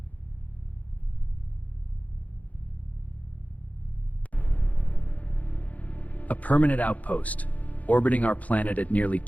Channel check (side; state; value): right; late; 0.073 ms